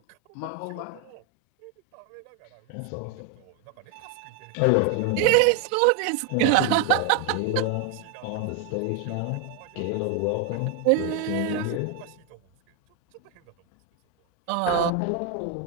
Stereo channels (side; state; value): both; different; correlation 0.01